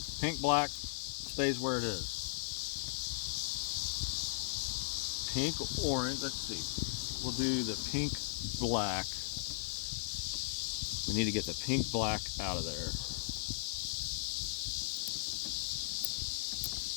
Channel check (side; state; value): right; silent; digital silence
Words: pink, black stays where it is. Pink, orange, let's see. We'll do the pink, black. We need to get the pink, black out of there.